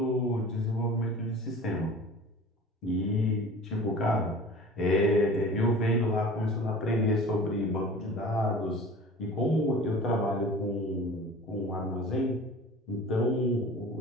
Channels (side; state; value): both; normal; correlation 0.41